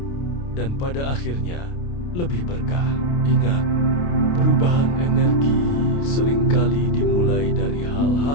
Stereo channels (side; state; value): right; late; 29 ms